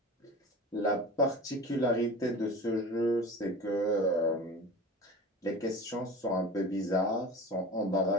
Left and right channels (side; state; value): both; normal; correlation 0.35